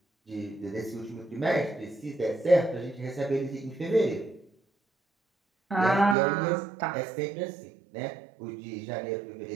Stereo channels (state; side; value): drops out; left; at 6.2 s